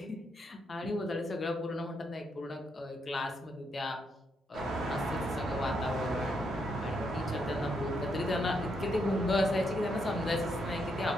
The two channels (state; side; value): normal; both; correlation 0.78